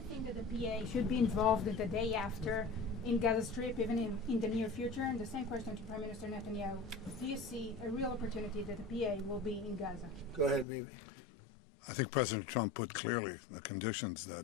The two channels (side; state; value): right; drops out; at 10.7 s